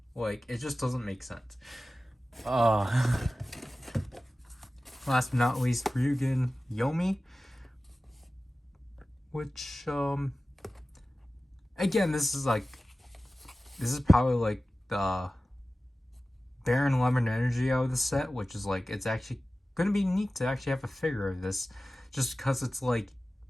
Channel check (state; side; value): normal; both; correlation 0.96